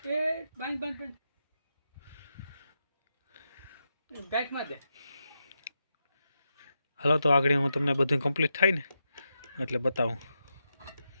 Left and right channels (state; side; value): inverted; both; correlation -0.86